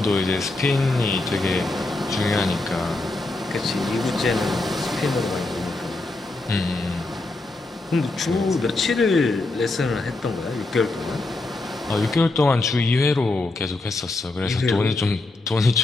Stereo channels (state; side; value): quieter; right; 3.0 dB